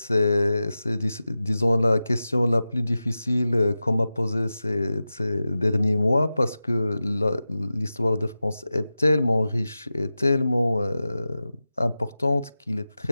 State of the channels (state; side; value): inverted; both; correlation -0.94